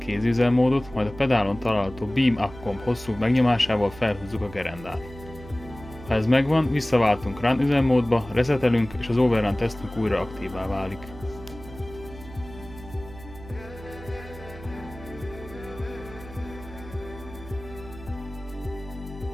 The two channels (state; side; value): noise; right; hum, 16 dB below the sound